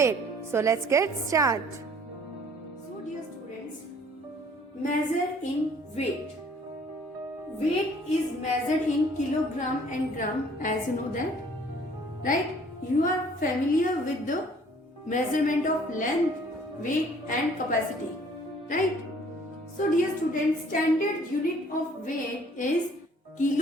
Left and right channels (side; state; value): both; normal; correlation 0.56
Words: So let's get started. So dear students, measure in weight. Weight is measured in kilogram and gram, as you know that, right? You are familiar with the measurement of length, weight and capacity, right? So dear students, standard unit of weight is